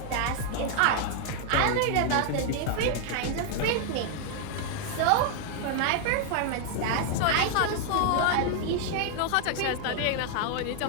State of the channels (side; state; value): both; different; correlation 0.00